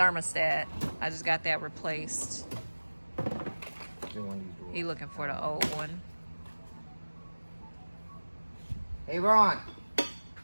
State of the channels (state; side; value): inverted; both; correlation -1.00